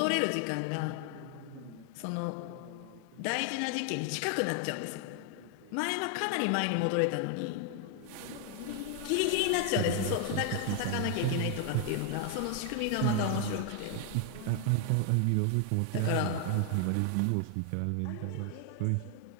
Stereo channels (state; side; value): different; both; correlation 0.00